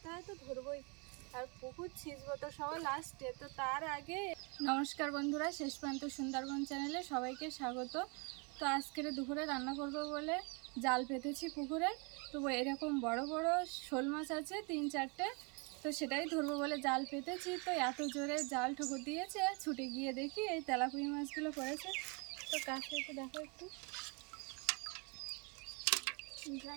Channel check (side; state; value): left; quieter; 32.9 dB